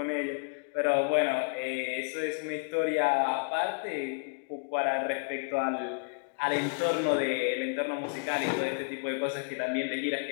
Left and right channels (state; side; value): quieter; right; 37.1 dB